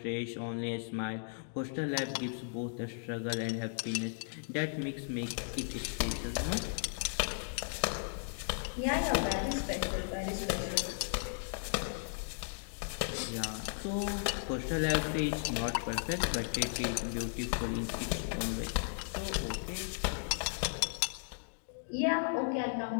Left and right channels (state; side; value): silent; right; digital silence